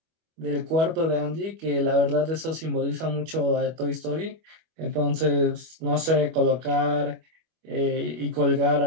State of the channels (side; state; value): left; late; 25 ms